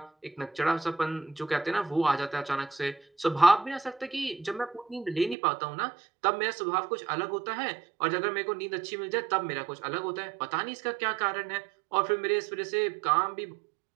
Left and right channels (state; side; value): drops out; left; at 5.4 s